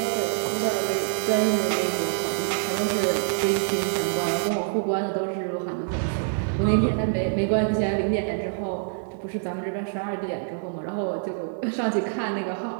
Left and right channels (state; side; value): silent; left; digital silence